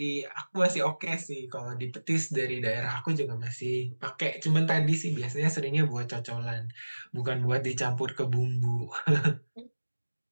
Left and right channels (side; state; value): both; inverted; correlation -1.00